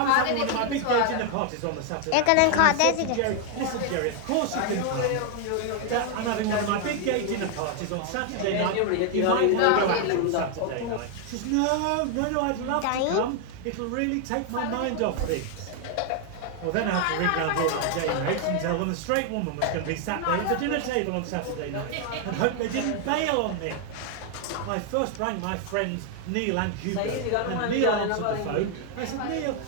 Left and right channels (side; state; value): both; different; correlation 0.00